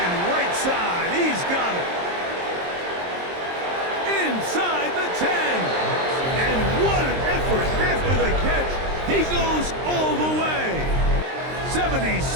Side, he's got it. Inside the 10. And what an effort after the catch. He goes all the way.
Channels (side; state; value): left; late; 23 ms